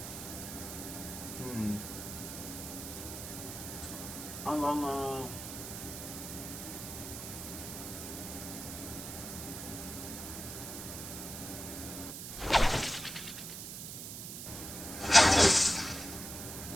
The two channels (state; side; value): noise; right; hiss, 8 dB below the sound